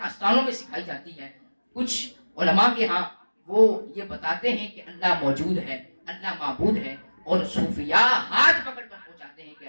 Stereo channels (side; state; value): both; inverted; correlation -1.00